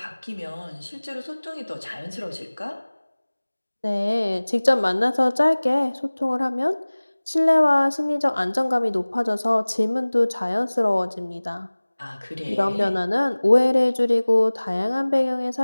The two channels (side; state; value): both; inverted; correlation -1.00